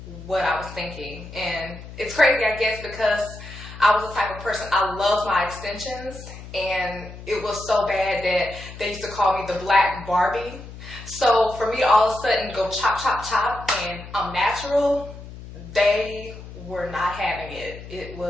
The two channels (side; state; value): left; noise; hum, 14 dB below the sound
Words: what I was thinking, and it's crazy, I guess, because I was the type of person, I loved my extensions, and it was so bad that they used to call me the Black Barbie. So for me to all of a sudden go chop, chop, chop, and I'm natural, they were not having it. It